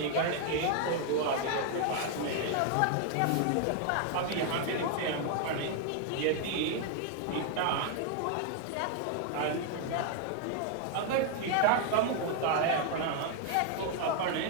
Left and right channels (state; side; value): different; both; correlation 0.00